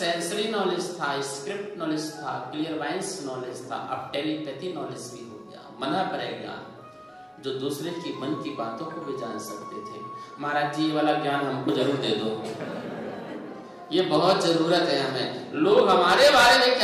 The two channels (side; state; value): both; identical; correlation 1.00